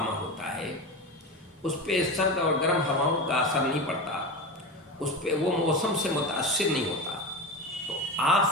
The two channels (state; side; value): normal; both; correlation 0.23